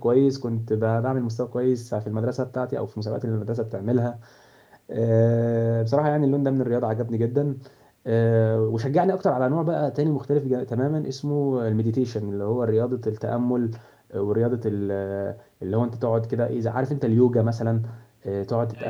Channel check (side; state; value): both; identical; correlation 1.00